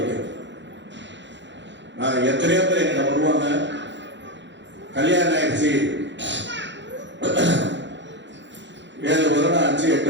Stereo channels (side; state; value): left; late; 0.53 ms